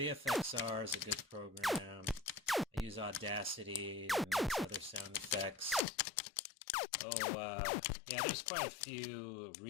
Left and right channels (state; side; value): drops out; right; at 5.9 s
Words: is a good program. I use Audacity to make other sound effects. Yeah, there's quite a few